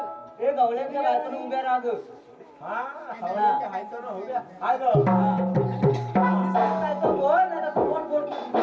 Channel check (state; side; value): identical; both; correlation 1.00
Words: हे गवळ्यांच्या बायकोन उभ्या राहा ग बोल नाही कोण बोल